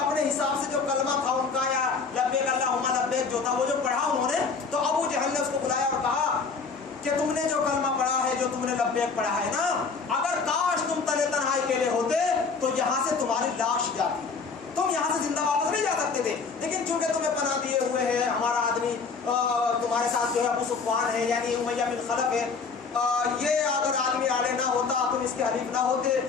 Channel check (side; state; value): right; quieter; 4.9 dB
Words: حساب سے جو کلمہ تھا ان کا، یا لبیک اللہم لبیک جو تھا، وہ جو پڑھا انہوں نے، تو ابو جہل نے اس کو بلایا اور کہا کہ تم نے جو کلمہ پڑھا ہے، جو تم نے لبیک پڑھا ہے نا، اگر کاش تم تنہے تنہائی اکیلے ہوتے تو یہاں سے تمہاری لاش جاتی، تم یہاں سے زندہ واپس نہیں جا سکتے تھے، لیکن چونکہ تمہیں پناہ دیے تمہارے ساتھ جو ہے ابو سفیان ہے یعنی امیہ بن خلف ہے، یہ اگر آدمی آڑے نہ ہوتا، تم اس کے حریف نہ ہوتے،